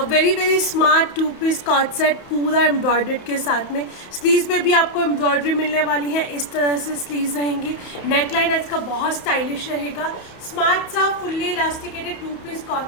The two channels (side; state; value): right; late; 31 ms